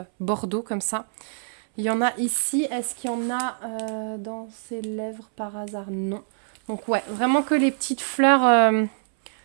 bordeaux comme ça. Il y en a ici, est-ce qu'il y en a dans ses lèvres par hasard? Non. Donc ouais, vraiment que les petites fleurs,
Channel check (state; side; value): silent; left; 62 dB below the other